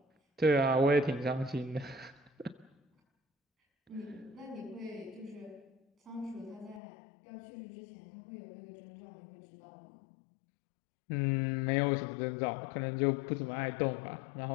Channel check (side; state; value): right; drops out; at 6.8 s